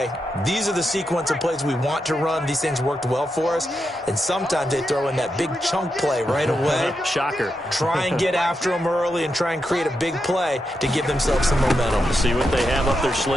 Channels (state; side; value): normal; both; correlation 0.85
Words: these are the sequence of plays we want to run. These things worked well for us. And sometimes they throw in that big chunk play right away. Shocker. Try and get after them early and try and create a big play to give themselves some momentum. See what they have up their